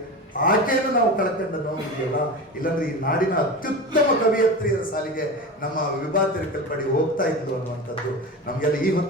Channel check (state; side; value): normal; both; correlation 0.27